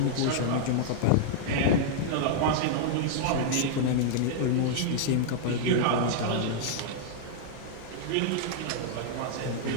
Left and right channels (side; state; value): both; different; correlation -0.01